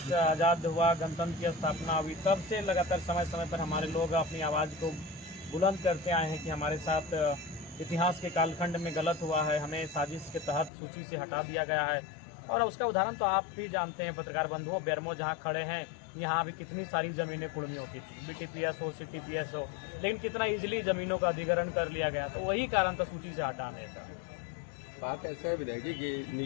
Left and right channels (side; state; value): right; drops out; at 10.7 s